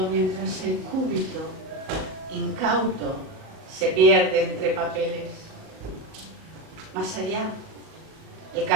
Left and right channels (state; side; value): late; left; 37 ms